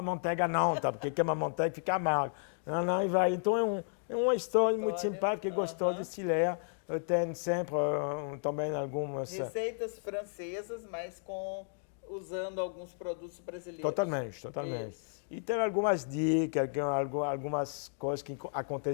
manteiga não, tá? Porque queima a manteiga fica amargo. Não, e vai. Então é uma história muito simpática e gostosa de se ler. Tem sempre também algumas... receitas francesas, mas usando alguns produtos brasileiros. Totalmente. Isso. E tem algumas dicas, algumas coisas que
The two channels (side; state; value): right; silent; digital silence